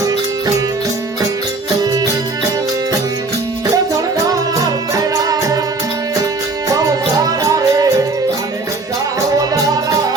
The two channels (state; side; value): quieter; left; 3.4 dB